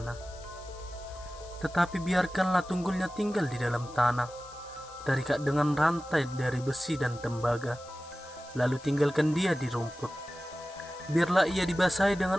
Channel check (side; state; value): left; noise; hiss, 20 dB below the sound